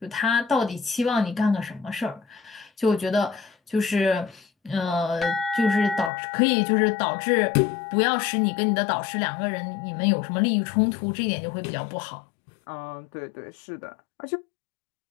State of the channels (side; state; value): right; drops out; at 6.1 s